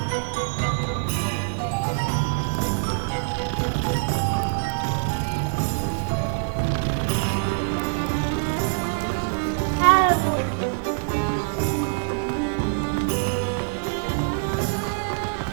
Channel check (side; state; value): left; silent; digital silence